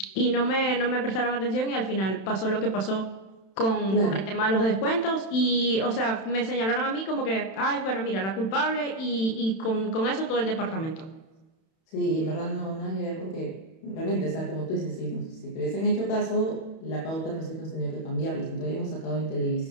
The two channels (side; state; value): right; late; 31 ms